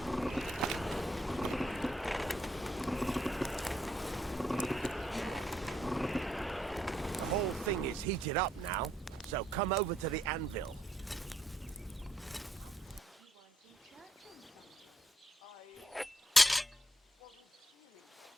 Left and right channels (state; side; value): normal; both; correlation 0.73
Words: The whole thing is heated up now, so come over to the anvil.